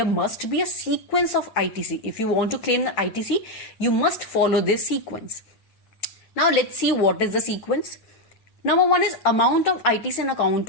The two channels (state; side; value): late; right; 8.9 ms